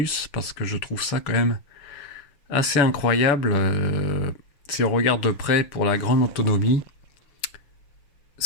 parce que je trouve ça quand même assez incroyable si on regarde de près pour la grande autonomie.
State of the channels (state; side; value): late; right; 6.4 ms